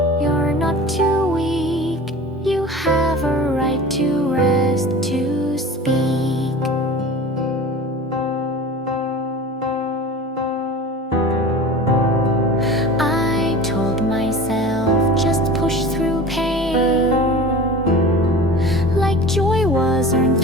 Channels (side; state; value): both; normal; correlation 0.37